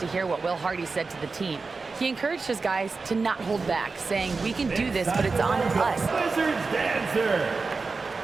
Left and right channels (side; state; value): left; quieter; 4.2 dB